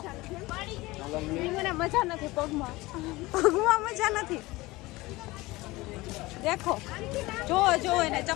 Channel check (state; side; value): quieter; right; 20.6 dB